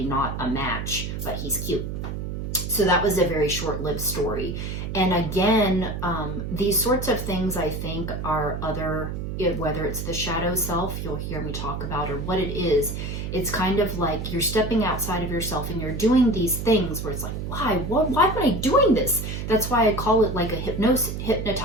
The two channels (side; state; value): right; noise; hum, 5 dB below the sound